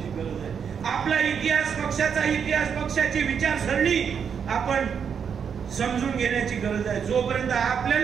गरज आहे. आपला इतिहास, पक्षाचा इतिहास, पक्षाची विचारसरणी आपण समजून घेण्याची गरज आहे. जोपर्यंत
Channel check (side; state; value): left; quieter; 7.1 dB